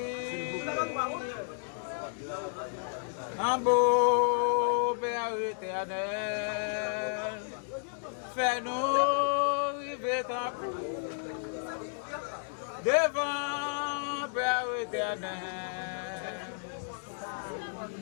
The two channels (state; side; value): silent; right; digital silence